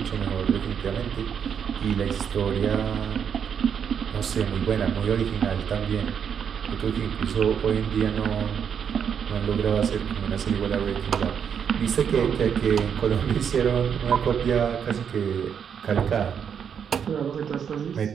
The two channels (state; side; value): quieter; left; 7.7 dB